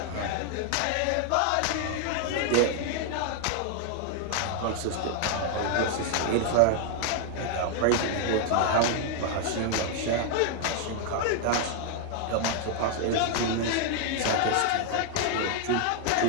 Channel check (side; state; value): both; different; correlation 0.00